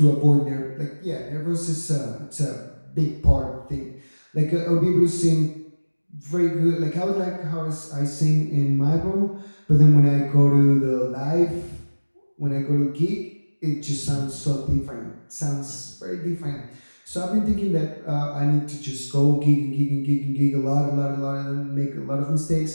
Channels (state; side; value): inverted; both; correlation -1.00